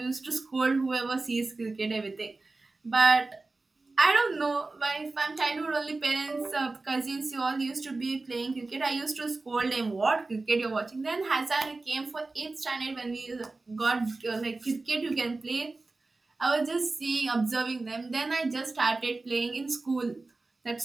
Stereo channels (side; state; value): left; quieter; 3.4 dB